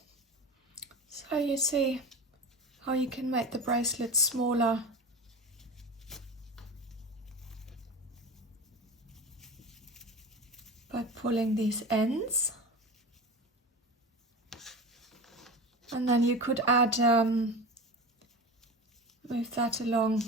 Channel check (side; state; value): both; normal; correlation 0.29